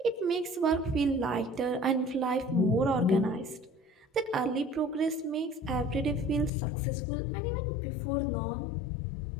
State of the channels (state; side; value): drops out; right; at 6.5 s